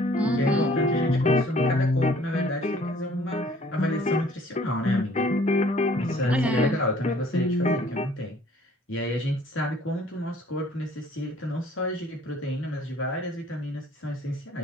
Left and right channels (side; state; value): both; normal; correlation 0.56